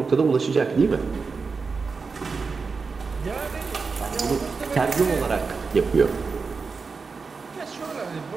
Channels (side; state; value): left; quieter; 4.8 dB